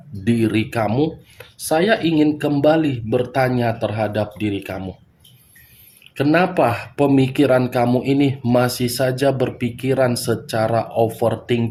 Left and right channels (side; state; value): both; identical; correlation 1.00